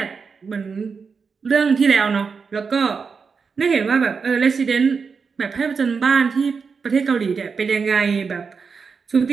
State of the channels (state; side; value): quieter; left; 5.4 dB